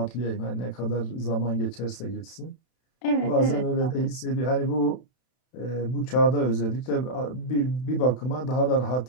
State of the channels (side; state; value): right; late; 32 ms